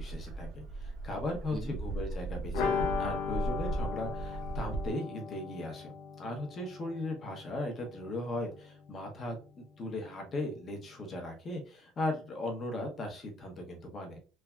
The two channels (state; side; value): normal; both; correlation 0.66